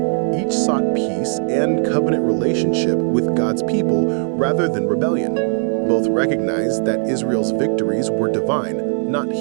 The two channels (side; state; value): left; silent; 66 dB below the other